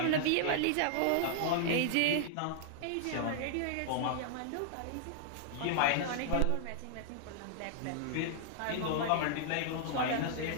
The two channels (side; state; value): both; different; correlation -0.01